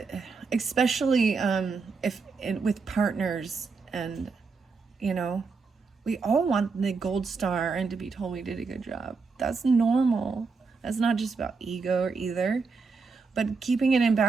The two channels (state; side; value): quieter; left; 4.6 dB